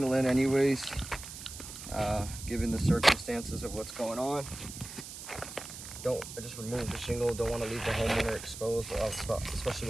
in anyways, given the circumstances of what's going on. I just removed the shingle. Don't want to leave the homeowner exposed, especially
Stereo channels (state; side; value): noise; right; hiss, 11 dB below the sound